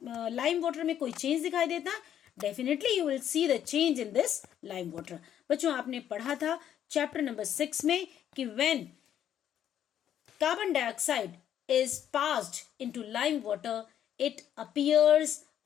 लाइम वाटर में कोई चेंज दिखाई देता? Definitely you will see the change in this lime water. बच्चों, आपने पढ़ा था चैप्टर नंबर 6 में कि when carbon dioxide is passed into lime water, it appears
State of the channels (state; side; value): quieter; right; 10.2 dB